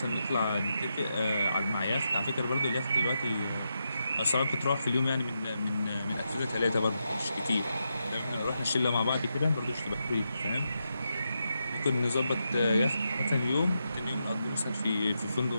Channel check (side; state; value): both; inverted; correlation -0.85